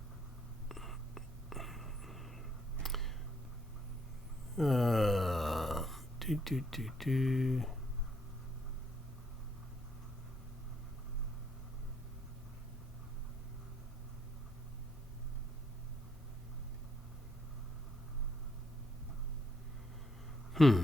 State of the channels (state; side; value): normal; both; correlation 0.72